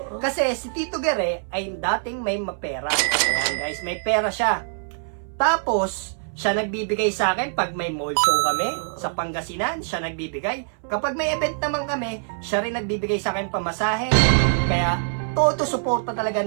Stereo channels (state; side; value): silent; left; 61 dB below the other